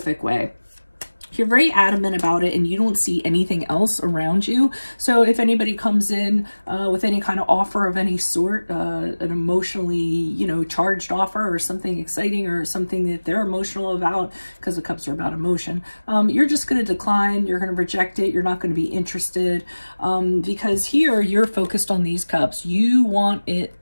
way. You're very adamant about it and you don't see anything else around you. So if anybody comes in with any kind of offer of any sort, an emotionally, you know, charged offer or something exciting or something that they're emotional about, because the cups are about emotion, you're just going to decline. You're going to reject it. You're not going to be interested because here you're focused on these cups. You want it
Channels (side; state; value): both; inverted; correlation -1.00